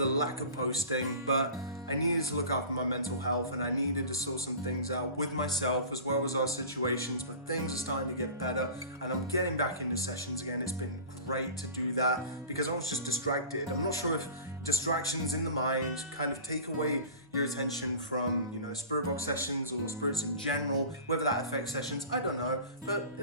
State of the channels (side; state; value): both; inverted; correlation -0.38